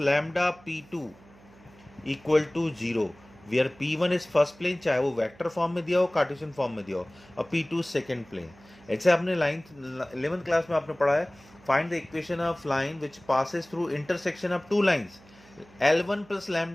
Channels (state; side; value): noise; right; hum, 25 dB below the sound